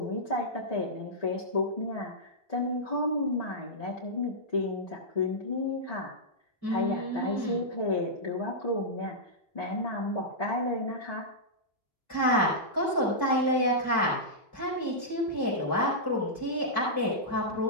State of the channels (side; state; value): both; normal; correlation -0.12